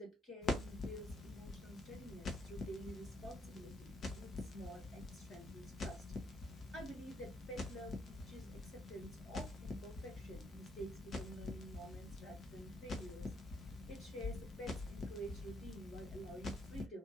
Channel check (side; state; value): both; normal; correlation 0.73